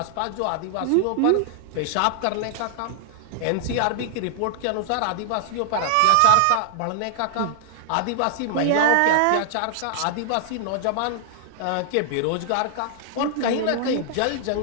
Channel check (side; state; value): both; different; correlation 0.00